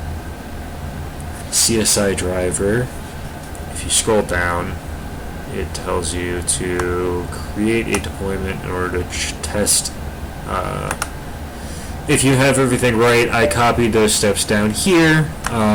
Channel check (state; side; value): identical; both; correlation 1.00